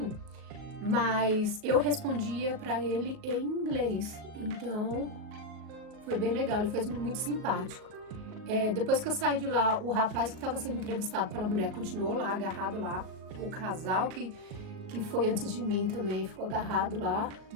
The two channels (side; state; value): left; late; 38 ms